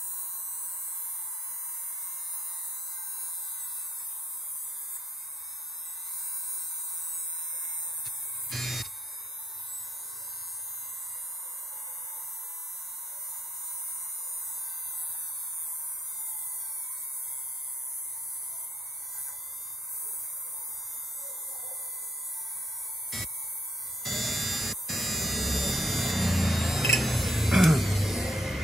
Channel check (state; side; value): normal; both; correlation 0.73